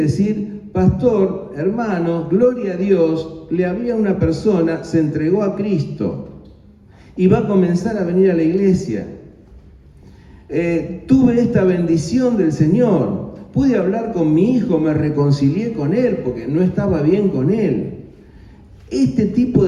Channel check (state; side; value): identical; both; correlation 1.00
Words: pastor, hermano, gloria a Dios, le había una persona, se entregó a Cristo y va a comenzar a venir a la iglesia. Tuve esta bendición del Señor, pude hablar con mi hijo, me reconcilié con él porque no estaba bien con él. Este tipo